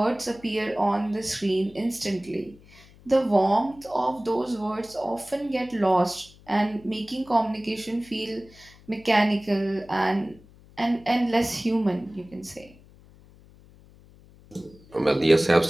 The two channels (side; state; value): left; noise; hum, 25 dB below the sound